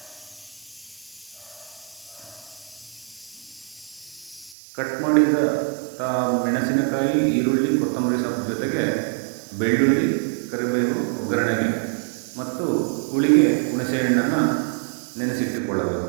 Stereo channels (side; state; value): left; drops out; at 4.5 s